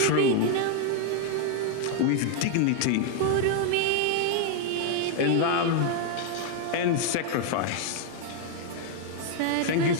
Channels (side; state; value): both; different; correlation 0.00